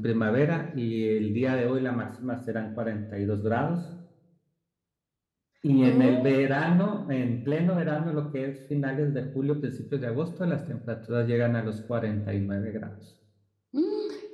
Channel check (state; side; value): identical; both; correlation 1.00